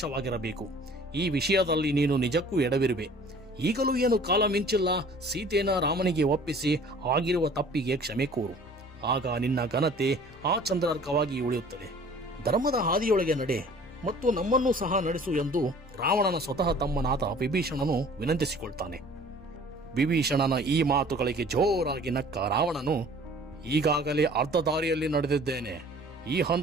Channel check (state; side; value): normal; both; correlation 0.50